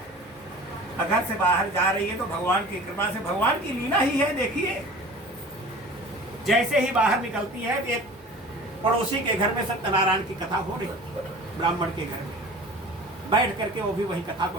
घर से बाहर जा रही है तो भगवान की कृपा से, भगवान की लीला ही है। देखिए, जैसे ही बाहर निकलती है एक पड़ोसी के घर में सत्यनारायण की कथा हो रही, ब्राह्मण के घर में बैठ करके वो भी वही कथा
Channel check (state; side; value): normal; both; correlation 0.41